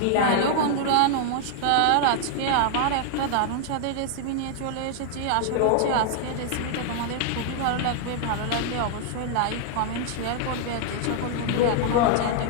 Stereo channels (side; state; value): both; different; correlation 0.00